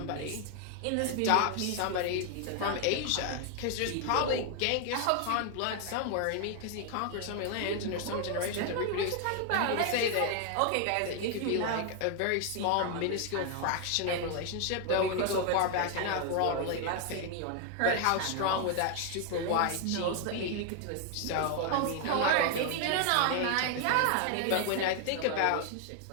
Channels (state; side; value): different; both; correlation 0.00